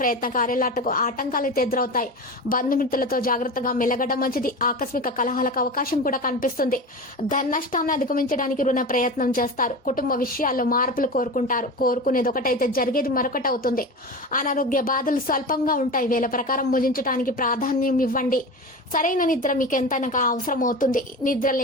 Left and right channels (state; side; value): normal; both; correlation 0.28